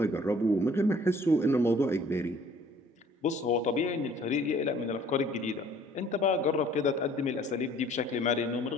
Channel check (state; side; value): normal; both; correlation 0.55